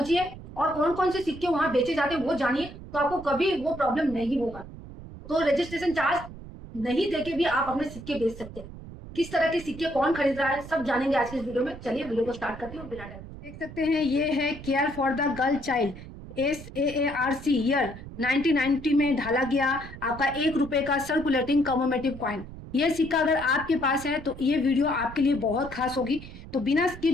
और कौन कौन से सिक्के वहां बेचे जाते हैं वो जानिए, तो आपको कभी वो प्रॉब्लम नहीं होगा। तो रजिस्ट्रेशन चार्ज नहीं देके भी आप अपने सिक्के बेच सकते हैं। किस तरह के सिक्के कौन खरीद रहा है सब जानेंगे आज के इस वीडियो में। चलिए वीडियो को स्टार्ट करते हैं बिना टाइम। देख सकते हैं ये है care for the girl child, SAARC year 1990 में ढाला गया आपका 1 रुपए का सर्कुलेटिंग कमोमेटिव कॉइन। ये सिक्का अगर आपके पास है तो ये वीडियो आपके लिए बहुत खास होगी, तो बिना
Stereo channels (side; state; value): right; noise; rumble, 14 dB below the sound